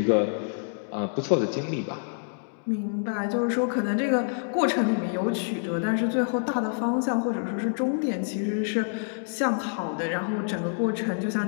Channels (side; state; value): right; silent; digital silence